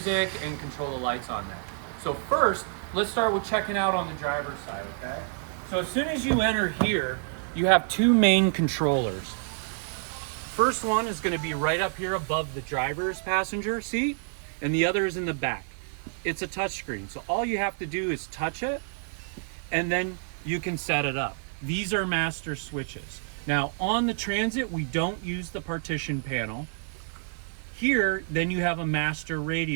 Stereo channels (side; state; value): left; silent; digital silence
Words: and control the lights on there. So first, let's start with checking out on the driver's side, okay? So as soon as you enter here, you have two main controllers. First one is going to be right up here above the driver's passenger seat, and the other is in the back. It's a touch screen, so all you have to do is touch it and then you can set it up. These are master switches. Now on the Transit, we don't use the partition panel. Here, then you have a master